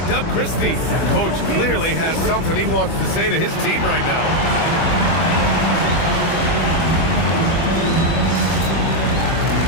Doug Christie. Coach clearly has something he wants to say to his team right now.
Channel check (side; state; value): right; late; 25 ms